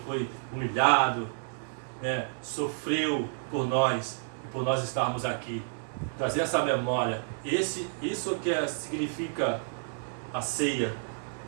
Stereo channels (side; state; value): left; silent; digital silence